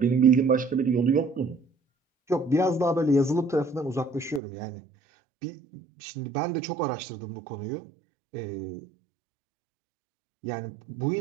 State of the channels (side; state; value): left; drops out; at 4.4 s